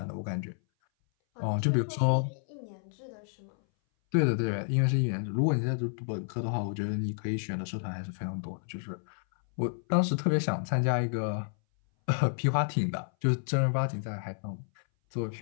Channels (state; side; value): silent; right; 58 dB below the other